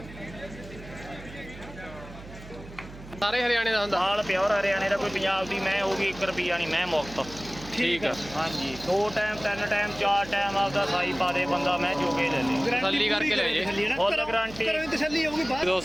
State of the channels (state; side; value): noise; right; hum, 16 dB below the sound